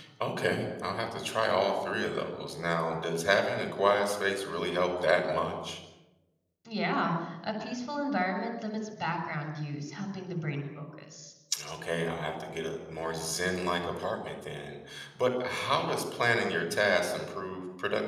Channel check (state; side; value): identical; both; correlation 1.00